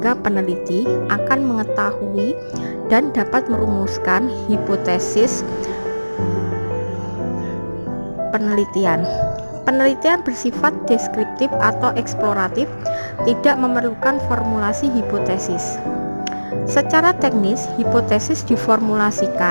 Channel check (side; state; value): both; inverted; correlation -1.00